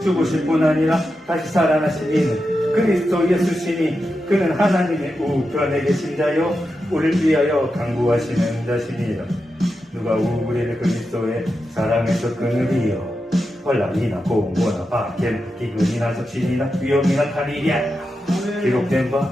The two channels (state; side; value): normal; both; correlation 0.89